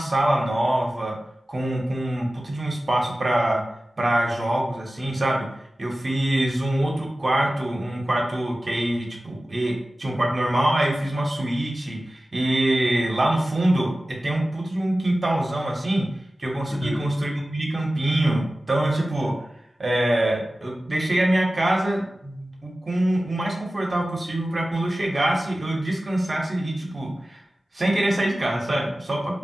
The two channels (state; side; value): normal; both; correlation 0.95